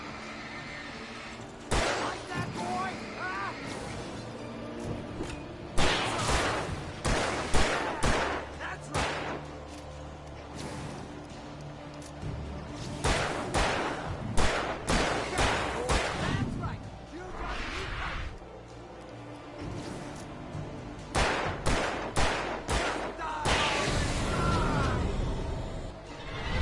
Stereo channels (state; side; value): identical; both; correlation 1.00